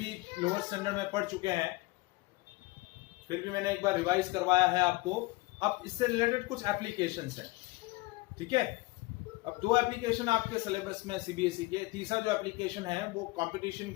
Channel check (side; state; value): right; quieter; 22.5 dB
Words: lower standard में पढ़ चुके हैं, फिर भी मैंने एक बार रिवाइज करवाया है आपको। अब इससे रिलेटेड कुछ एप्लीकेशंस हैं, ठीक है। अब दो एप्लीकेशन आपके सिलेबस में सीबीएसई के, तीसरा जो एप्लीकेशन है वो कंपटीशन